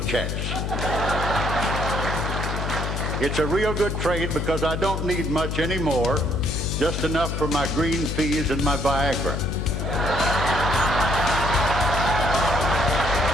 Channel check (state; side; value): noise; left; hum, 2 dB below the sound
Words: checks. It's a real good trade because I don't need much anymore, just enough for my green peas and my Viagra.